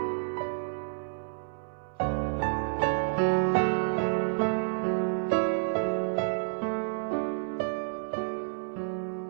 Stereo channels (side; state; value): left; silent; 58 dB below the other